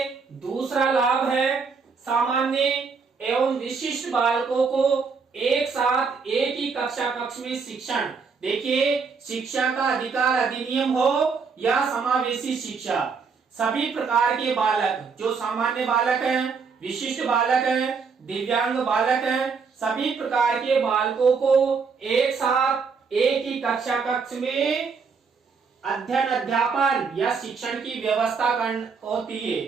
दूसरा लाभ है सामान्य एवं विशिष्ट बालकों को एक साथ एक ही कक्ष में शिक्षण। देखिए, शिक्षा का अधिकार अधिनियम हो या समावेशी शिक्षा, सभी प्रकार के बालक, जो सामान्य बालक हैं, विशिष्ट बालक हैं, दिव्यांग बालक हैं, सभी प्रकार के बालकों को एक साथ एक ही कक्ष में अध्ययन अध्यापन या शिक्षण की व्यवस्था होती है।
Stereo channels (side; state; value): left; quieter; 5.3 dB